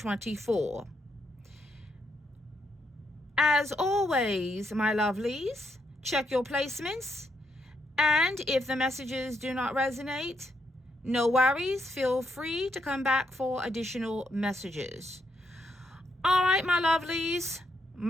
As always, my lovelies, check your placements. And if the messages do not resonate, no worries, feel free to come back for additional messages. All right, my lovelies,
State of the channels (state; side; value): normal; both; correlation 0.77